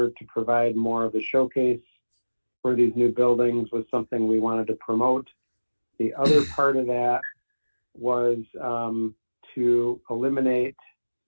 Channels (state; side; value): inverted; both; correlation -1.00